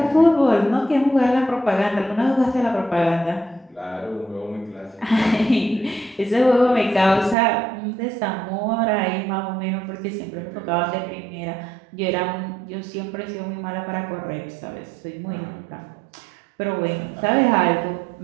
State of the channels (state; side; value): drops out; left; at 7.4 s